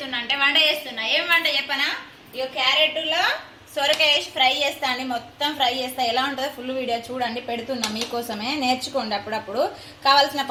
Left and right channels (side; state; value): both; identical; correlation 1.00